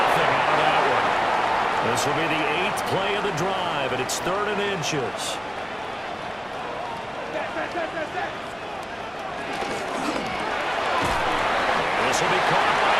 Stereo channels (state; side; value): identical; both; correlation 1.00